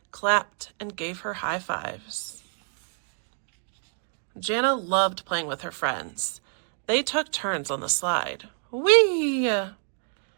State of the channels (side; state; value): left; silent; 60 dB below the other